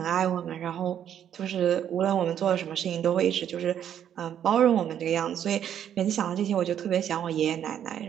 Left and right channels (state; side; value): quieter; left; 9.7 dB